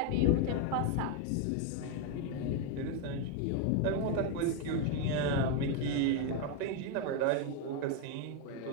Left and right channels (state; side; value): different; both; correlation 0.01